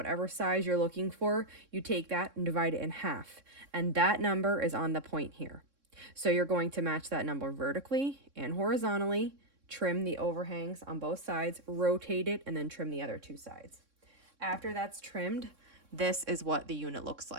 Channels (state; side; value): late; left; 3.6 ms